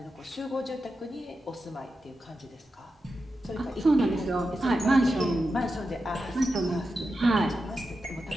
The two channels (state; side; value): normal; both; correlation 0.90